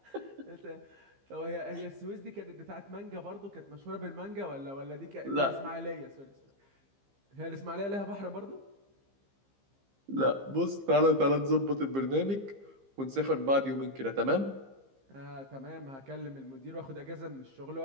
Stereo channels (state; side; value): late; left; 15 ms